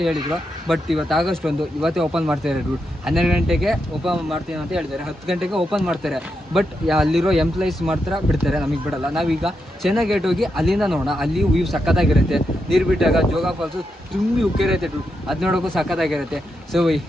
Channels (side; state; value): both; normal; correlation 0.84